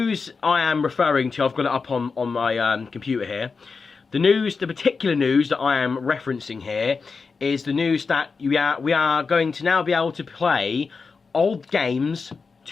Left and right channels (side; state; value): right; quieter; 4.8 dB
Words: I am referring to, I've got it up on my computer here. The particular news that I am referencing here is the news that we are going to now be able to play old games